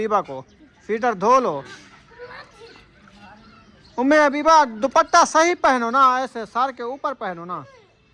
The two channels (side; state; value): both; identical; correlation 1.00